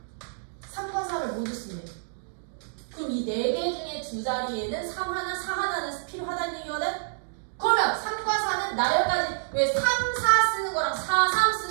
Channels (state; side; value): silent; left; digital silence